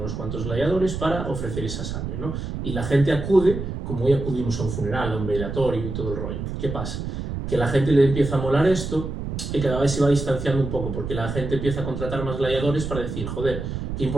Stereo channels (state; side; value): noise; right; rumble, 5 dB below the sound